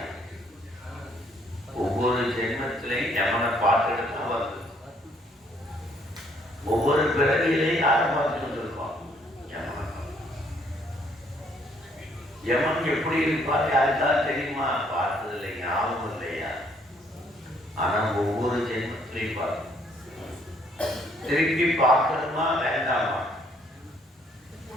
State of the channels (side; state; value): both; normal; correlation 0.66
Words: ஒவ்வொரு ஜென்மத்திலையும் யமனை பார்த்துட்டு தான் வருது. ஒவ்வொரு பிறவியிலையும் யாரை பார்த்துட்டு இருக்கோம்? யமன் எப்படி இருப்பார் யாருக்காவது தெரியுமா? பார்த்ததில்லை, ஞாபகம் இல்லையா? ஆனா ஒவ்வொரு ஜென்மத்திலையும் பார்க்கணும். திருப்பி பார்க்கணுமா வேண்டாமா?